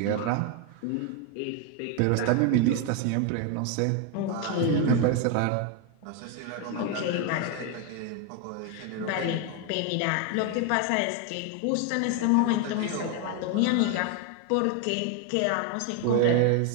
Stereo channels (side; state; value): both; different; correlation 0.01